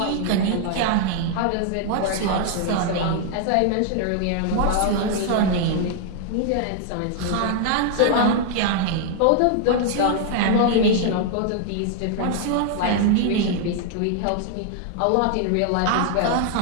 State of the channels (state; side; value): different; both; correlation 0.00